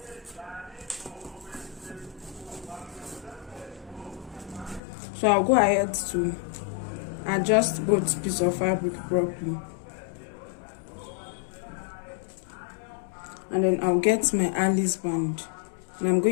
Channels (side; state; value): right; drops out; at 4.8 s